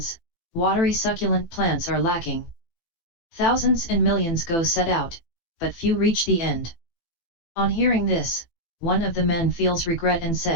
watery succulent plants are lacking. Thousands and millions go set out, but few reach the end." On hearing this, one of the men feels regret and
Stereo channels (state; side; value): late; right; 18 ms